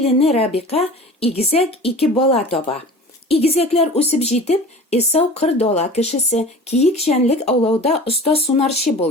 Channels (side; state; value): both; normal; correlation 0.39